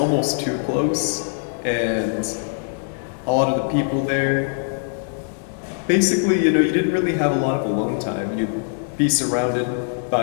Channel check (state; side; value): silent; right; 58 dB below the other